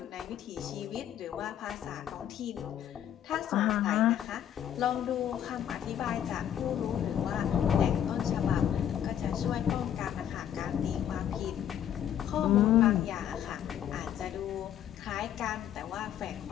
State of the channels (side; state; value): right; quieter; 10.2 dB